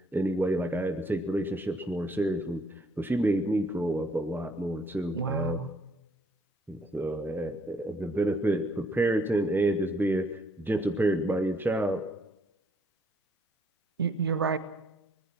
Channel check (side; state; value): both; normal; correlation 0.66